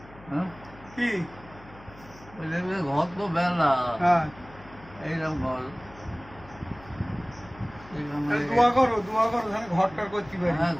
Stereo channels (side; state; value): left; noise; hum, 21 dB below the sound